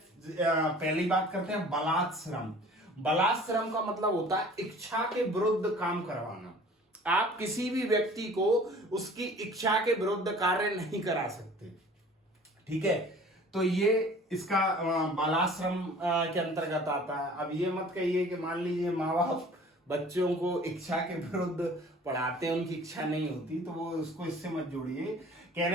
बात करते हैं बलात् श्रम। बलात् श्रम का मतलब होता है इच्छा के विरुद्ध काम करवाना। आप किसी भी व्यक्ति को उसकी इच्छा के विरुद्ध कार्य नहीं करा सकते, ठीक है। तो ये इसका बलात् श्रम के अंतर्गत आता है। अब ये मत कहिए कि मान लीजिए माँ बाप बच्चों को इच्छा के विरुद्ध पढ़ाते हैं, उनकी इच्छा नहीं होती, तो वो उसको इससे मत जोड़िए।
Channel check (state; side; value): normal; both; correlation 0.48